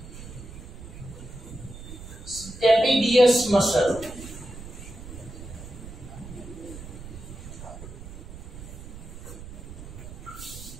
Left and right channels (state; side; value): noise; right; rumble, 12 dB below the sound